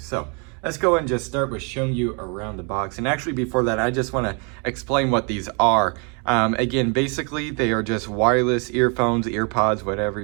let's go and just start with showing you around the box. And actually before that, I just want to explain what these are. Again, basically they are just wireless earphones, earpods, whatever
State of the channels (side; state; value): left; quieter; 34.8 dB